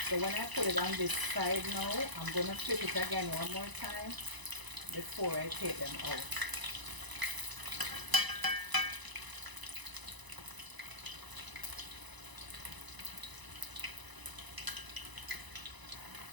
So when I put it on this side now, I'm going to flip it again one more time before I take them out.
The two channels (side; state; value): left; late; 1.0 ms